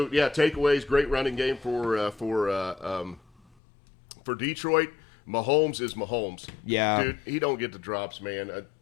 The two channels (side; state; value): right; drops out; at 3.4 s